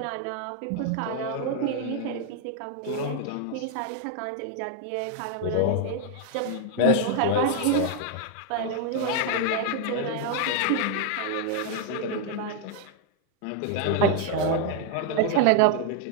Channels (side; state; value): both; different; correlation 0.01